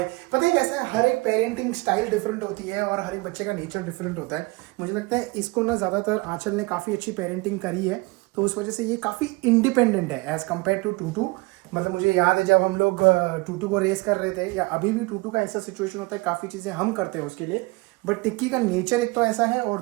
पता है कैसा है, हर एक पेरेंटिंग स्टाइल डिफरेंट होती है और हर एक बच्चे का नेचर डिफरेंट होता है। मुझे लगता है इसको ना ज़्यादातर आंचल ने काफ़ी अच्छी पेरेंटिंग करी है, तो उस वजह से ये काफ़ी इंडिपेंडेंट है एज़ कम्पेयर टू टूटू। मतलब मुझे याद है जब हम लोग टूटू को रेस कर रहे थे, या अभी भी टूटू का ऐसा सिचुएशन होता है, काफ़ी चीज़ें हम करते हैं उसके लिए, बट टिक्की का नेचर एक तो ऐसा है, और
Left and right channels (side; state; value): left; quieter; 24.9 dB